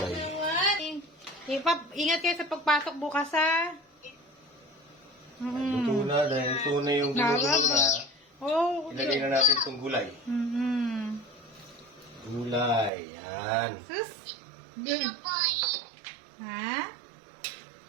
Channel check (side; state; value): left; drops out; at 12.9 s